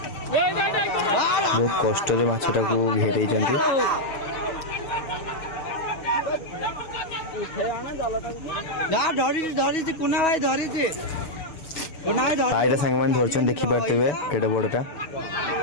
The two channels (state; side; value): late; right; 6.7 ms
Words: बहुत कष्ट माछटा को घेरे सांग मैंने धरछन देखी पारे केटे बड़टा